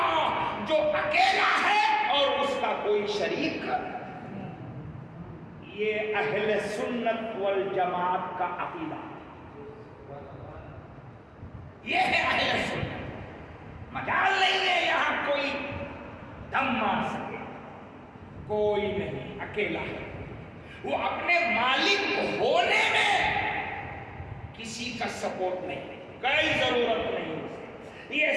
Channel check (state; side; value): identical; both; correlation 1.00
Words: جو اکیلا ہے اور اس کا کوئی شریک۔ یہ اہل سنت والجماعت کا عقیدہ، یہ ہے اہل سنت۔ مجال نہیں ہے یہاں کوئی دم مار سکے، کوئی نہیں، اکیلا ہے وہ، اپنے مالک ہونے میں کسی کا سپورٹ نہیں، کوئی ضرورت نہیں اسے، یہ